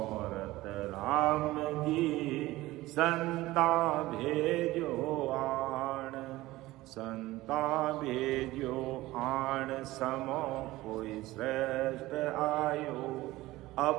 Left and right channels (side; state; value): left; quieter; 18.0 dB